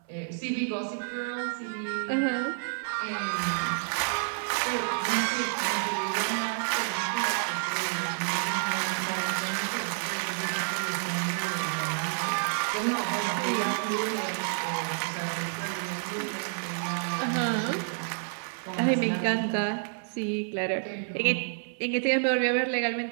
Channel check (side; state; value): left; silent; 58 dB below the other